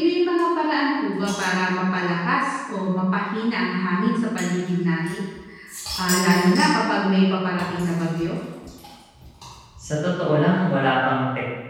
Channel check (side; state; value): both; identical; correlation 1.00